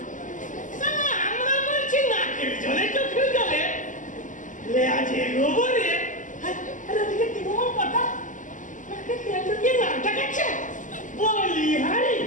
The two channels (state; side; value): late; right; 0.37 ms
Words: আমরা বলছি নাকের জলে চোখের জলে লেয়াজে গোবরে দিকে কি বল কথা নাকে তেল ঢুকিয়ে নাকটা কাটছে বলি হারি